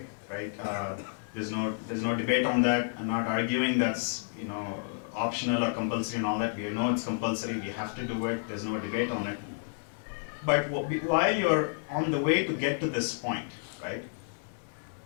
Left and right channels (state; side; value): silent; right; 57 dB below the other